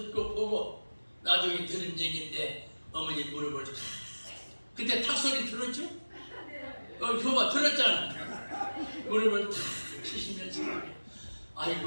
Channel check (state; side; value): inverted; both; correlation -1.00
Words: 보고 나중에 들은 얘기인데 어머니 무릎을 그때 탁 소리 들었죠? 그거 봐 들었잖아. 무릎을 탁 치시면서